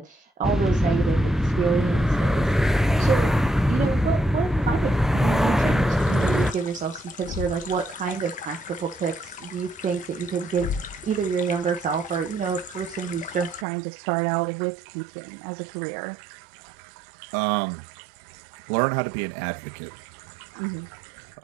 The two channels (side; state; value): left; drops out; at 13.7 s